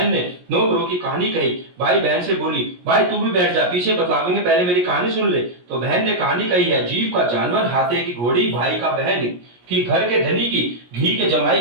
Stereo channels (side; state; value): left; late; 17 ms